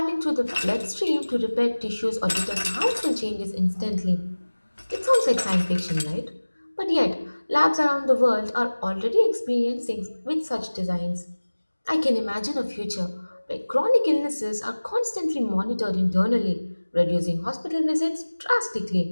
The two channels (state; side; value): inverted; both; correlation -1.00